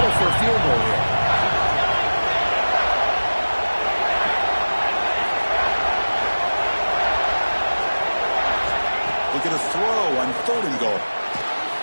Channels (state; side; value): inverted; both; correlation -1.00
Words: for a field goal here. Looking to throw on 3rd and goal.